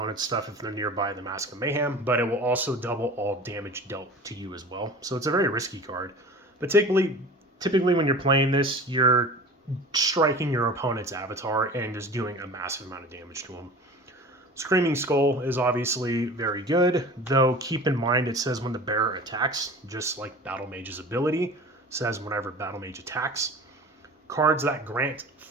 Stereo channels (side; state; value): both; normal; correlation 0.38